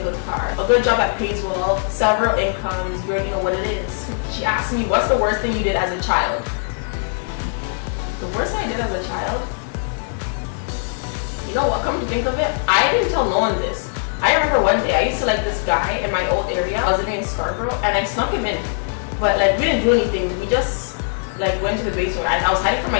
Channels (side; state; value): right; silent; digital silence